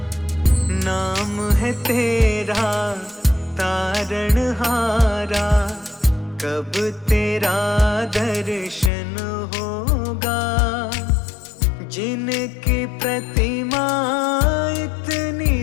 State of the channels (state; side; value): drops out; right; at 8.9 s